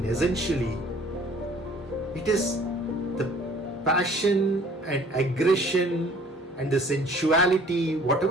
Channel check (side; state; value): both; normal; correlation 0.54